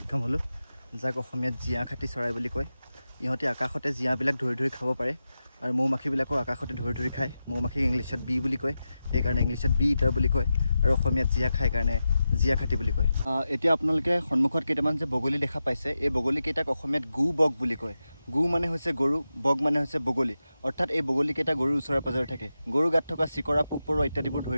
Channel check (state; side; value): inverted; both; correlation -0.91